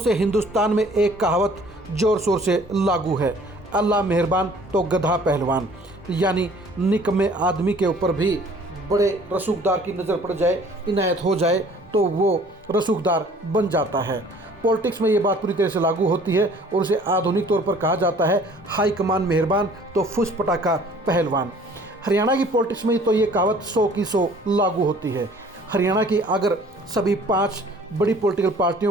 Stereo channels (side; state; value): both; normal; correlation 0.53